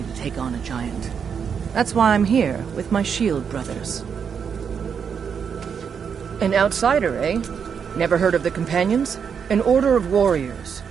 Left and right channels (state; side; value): quieter; left; 6.9 dB